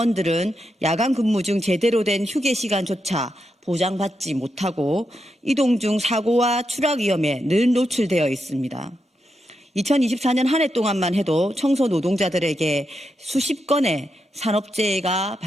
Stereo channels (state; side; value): normal; both; correlation 0.85